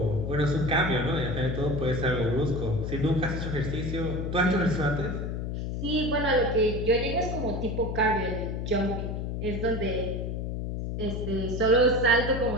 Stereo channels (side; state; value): left; noise; hum, 3 dB below the sound